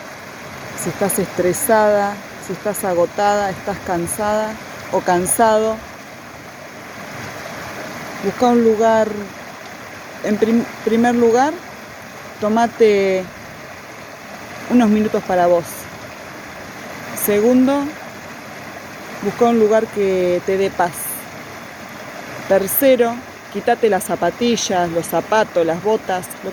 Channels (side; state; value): both; identical; correlation 1.00